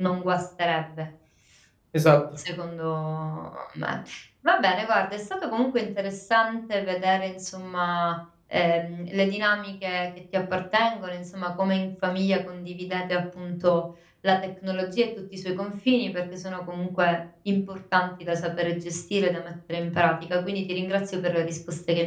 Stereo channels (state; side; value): identical; both; correlation 1.00